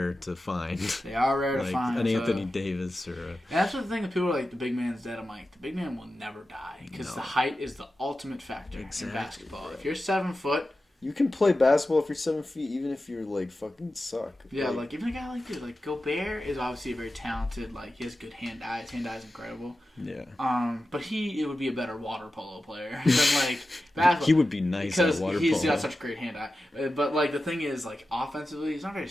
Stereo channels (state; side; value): normal; both; correlation 0.93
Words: to find. They are rare to find. An Anthony Davis or. And that's the thing. That people are like, the big man's dead. I'm like, the big man will never die because the height is the ultimate factor in basketball. If you're 7 foot. You can play basketball if you're 7 feet, even if you're like fucking suck. Yeah, like even a guy like dude, like Gobert is obviously very talented. Like he has good hand eye. His hand eye is incredible. Yeah. But it would be a better water polo player than like basketball. He would be nice at water polo. Because he's got such great hand eye. But like the thing is, like offensively, he's not very